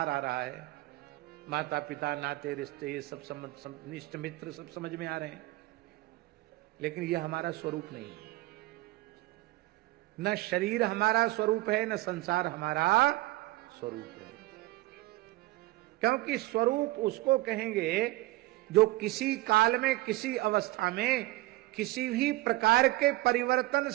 आ रहा है, माता पिता नाते रिश्ते ये सब निष्ठ मित्र सब समझ में आ रहे हैं, लेकिन यह हमारा स्वरूप नहीं है। न शरीर हमारा स्वरूप है, न संसार हमारा स्वरूप है। क्योंकि स्वरूप उसको कहेंगे जो किसी काल में किसी अवस्था में किसी भी प्रकार के परिवर्तन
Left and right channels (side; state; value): left; quieter; 19.1 dB